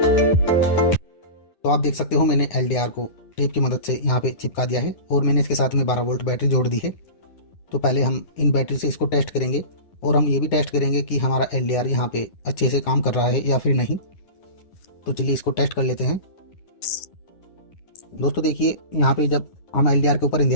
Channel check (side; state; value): right; late; 11 ms